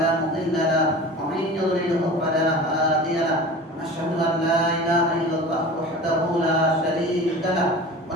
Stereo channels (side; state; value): both; normal; correlation 0.37